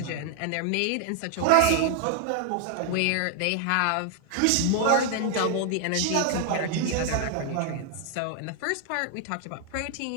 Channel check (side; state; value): both; different; correlation 0.00